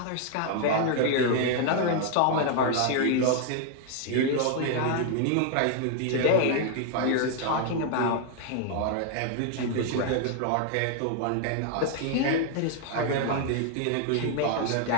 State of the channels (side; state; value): both; different; correlation 0.00